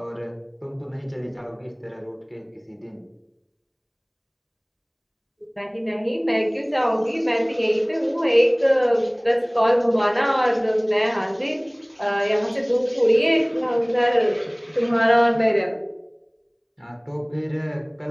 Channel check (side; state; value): both; identical; correlation 1.00